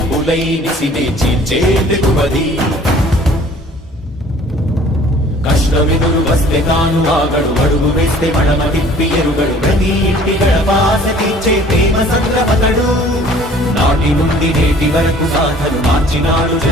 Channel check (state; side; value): normal; both; correlation 0.52